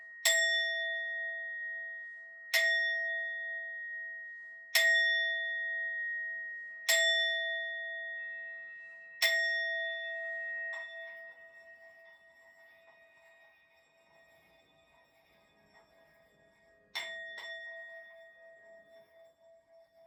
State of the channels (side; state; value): both; identical; correlation 1.00